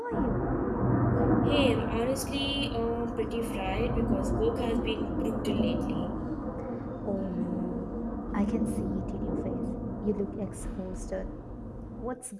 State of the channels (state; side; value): identical; both; correlation 1.00